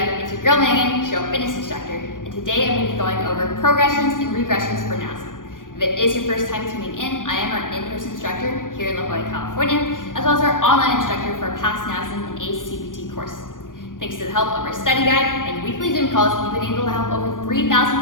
It's your girl Megan, show fitness instructor, and today I'm going to be going over progressions and regressions for Nasm. If it is your first time tuning in, I am our in-person instructor here in La Jolla, California, as well as our online instructor for our past Nasm and ACT7VE course. Thanks to the help of our study guide and weekly Zoom calls, we've been able to help over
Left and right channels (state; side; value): late; right; 0.89 ms